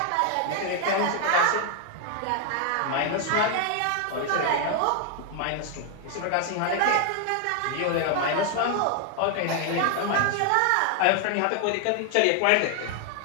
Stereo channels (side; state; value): both; different; correlation 0.00